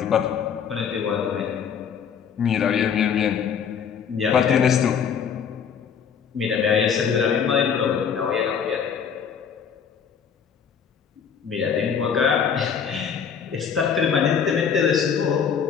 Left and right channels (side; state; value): right; quieter; 7.2 dB